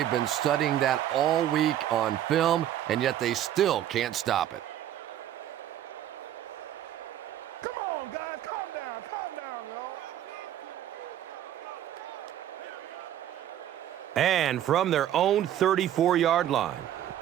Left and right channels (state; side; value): quieter; left; 11.6 dB